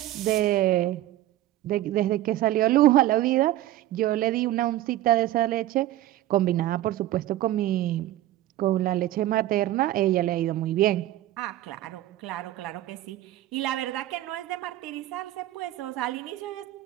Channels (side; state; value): left; quieter; 14.6 dB